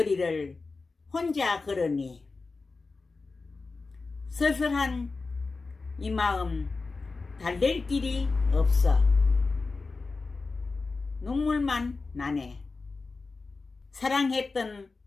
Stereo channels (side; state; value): right; quieter; 4.0 dB